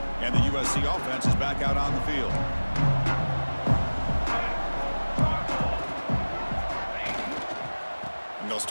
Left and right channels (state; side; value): inverted; both; correlation -1.00